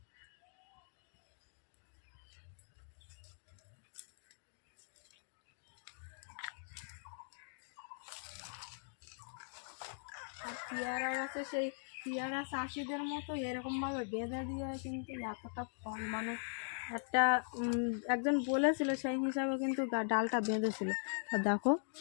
পেয়ারা গাছে সেই পেয়ারা চাষিদের মতো এরকমভাবে বেঁধে দিয়ে কিন্তু এতটা ফল মানে একটা একজন বলেছিল সেই হিসাবে কিন্তু ডালটা বেঁধেছিল। তা দেখো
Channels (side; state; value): right; silent; digital silence